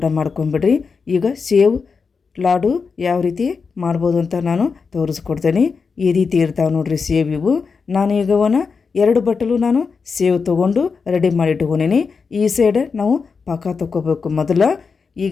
ಮಾಡ್ಕೊಂಬಿಡ್ರಿ. ಈಗ ಸೇವ್ ಲಾಡು ಯಾವ ರೀತಿ ಮಾಡ್ಬೋದು ಅಂತ ನಾನು ತೋರಿಸ್ಕೊಡ್ತೇನೆ. ಈ ರೀತಿ ಇರ್ತಾವೆ ನೋಡ್ರಿ ಸೇವ್ ಇವು. ನಾನು ಈಗ 2 ಬಟ್ಟಲು ನಾನು ಸೇವ್ ತೊಗೊಂಡು ರೆಡಿ ಮಾಡಿ ಇಟ್ಕೊಂಡೀನಿ. ಈ ಸೈಡ್ ನಾವು ಪಾಕ ತೊಗೋಬೇಕು ಮೊದಲು.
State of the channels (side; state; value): right; quieter; 5.2 dB